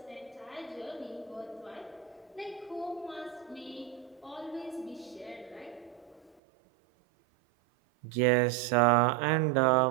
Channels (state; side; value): drops out; left; at 6.4 s